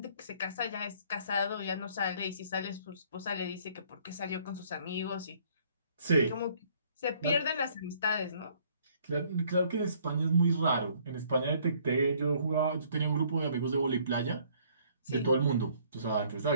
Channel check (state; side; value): inverted; both; correlation -0.61